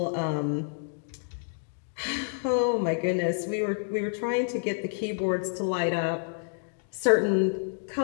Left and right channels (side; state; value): right; silent; digital silence